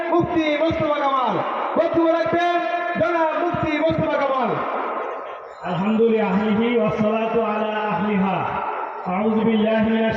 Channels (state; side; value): identical; both; correlation 1.00